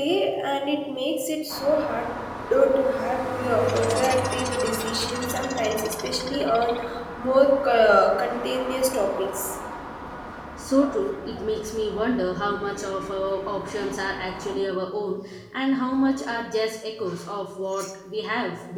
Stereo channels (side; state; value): both; identical; correlation 1.00